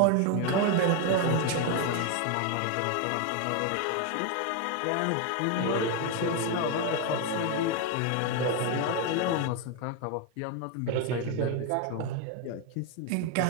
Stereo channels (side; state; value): both; different; correlation 0.01